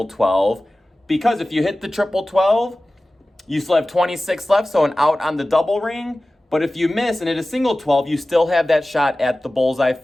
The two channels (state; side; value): normal; both; correlation 0.97